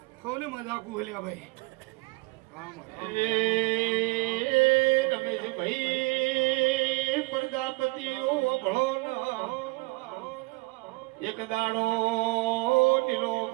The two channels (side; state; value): left; quieter; 24.6 dB